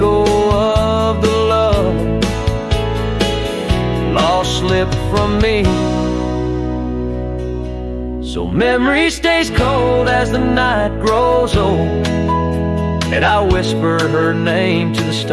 of the love lost slipped from me. So memory stays cold as the night grows old, and I whisper her name to the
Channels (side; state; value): both; identical; correlation 1.00